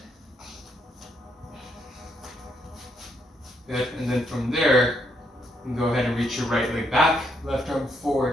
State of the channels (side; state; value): both; normal; correlation 0.76